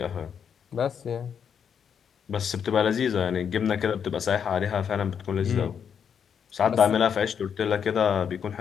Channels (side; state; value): right; quieter; 7.6 dB